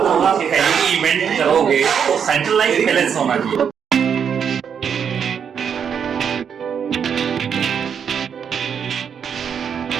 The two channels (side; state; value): left; quieter; 7.5 dB